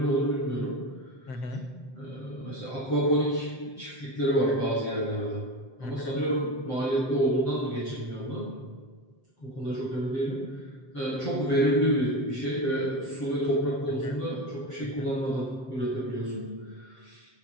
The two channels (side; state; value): right; late; 7.7 ms